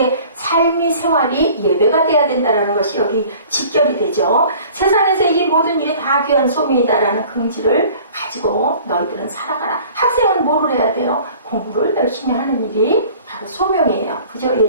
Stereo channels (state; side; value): inverted; both; correlation -0.48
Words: 삶의 생활이 예배가 돼야 된다는 것이 여기 직결이 되죠. 세상에서 이 모든 일이 다 귀한 소명이다라는 긍지를 가지고 너희들은 살아가라. 학생은 뭐를 해야 돼요? 공부를 열심히 하는 일이 바로 소명이에요. 그죠,